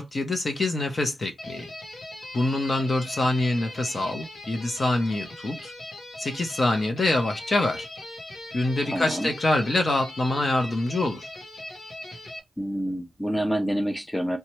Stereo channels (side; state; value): both; normal; correlation 0.90